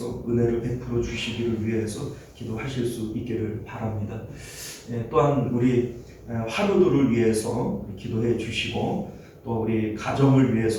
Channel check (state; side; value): identical; both; correlation 1.00